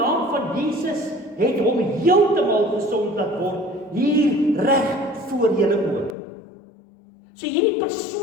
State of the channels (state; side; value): drops out; right; at 6.2 s